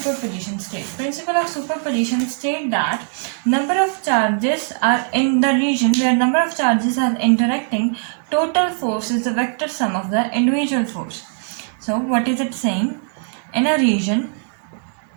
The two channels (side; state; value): left; silent; 60 dB below the other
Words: state? Principle of superposition state that number of charges are in the region where number of charges are interacting, total force is the vector sum of the individual force. So what is it saying? In a region